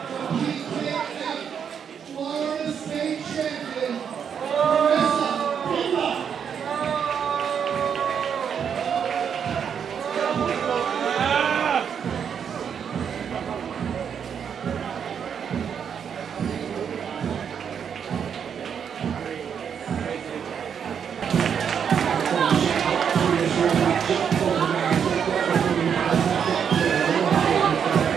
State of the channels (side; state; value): left; quieter; 7.6 dB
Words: Florida State champion.